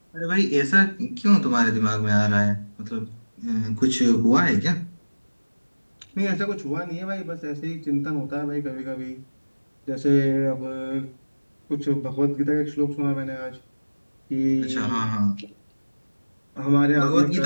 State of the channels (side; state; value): both; inverted; correlation -1.00